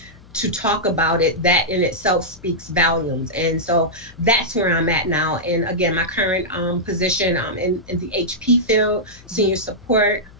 to talk about it, that in itself speaks volumes. And so that's where I'm at now. And again, my current position in the HP field, senior support,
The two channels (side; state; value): left; noise; hum, 23 dB below the sound